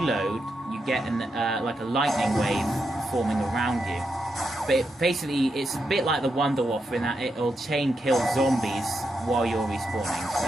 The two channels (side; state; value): both; normal; correlation 0.84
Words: you get like a lightning wave forming around you. But basically, it's a bit like the Wonder Waffle in that it'll chain kill zombies while you're respawning.